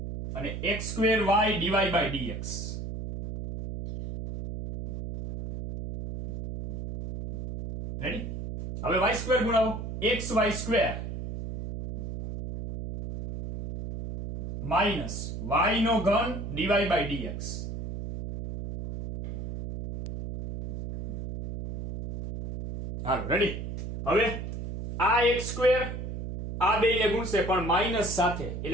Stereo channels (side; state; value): right; noise; hum, 6 dB below the sound